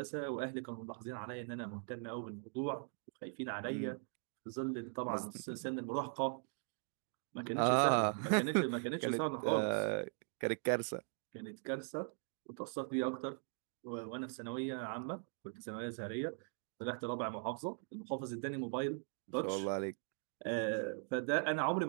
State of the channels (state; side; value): silent; left; 51 dB below the other